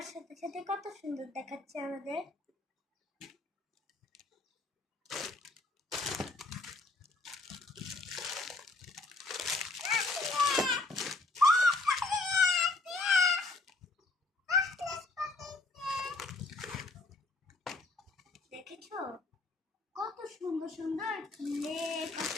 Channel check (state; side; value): quieter; right; 3.3 dB